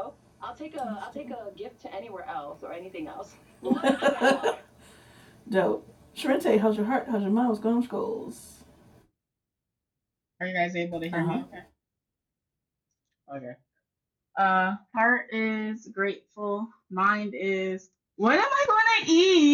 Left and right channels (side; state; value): both; identical; correlation 1.00